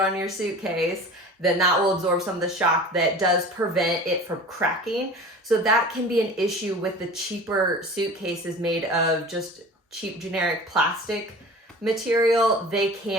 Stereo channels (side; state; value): both; normal; correlation 0.39